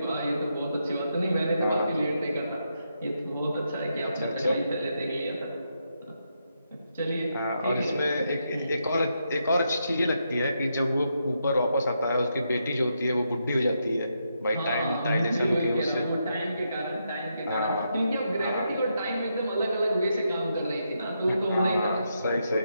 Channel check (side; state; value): both; inverted; correlation -0.82